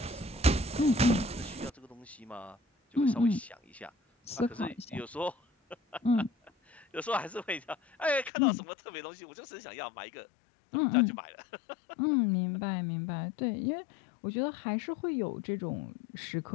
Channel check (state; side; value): drops out; right; at 8.3 s